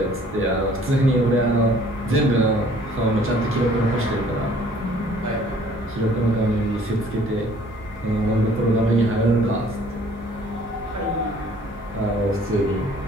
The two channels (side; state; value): both; normal; correlation 0.56